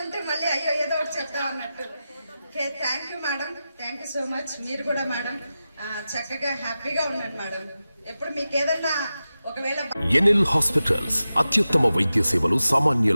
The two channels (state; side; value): inverted; both; correlation -0.93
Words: మళ్ళీ అయ్యో ఏదో ఒకటి చెప్తామన్నట్టు. Okay, thank you madam, thank you so much. మీరు కూడా మేడం చక్కగా హ్యాపీగా ఉండండి మేడం. ఎప్పుడు మీకు ఏదన్నా ఒకవేళ ఎన్ఎల్ హాస్పిటల్స్ అత్యుత్తమ వైద్య సేవలు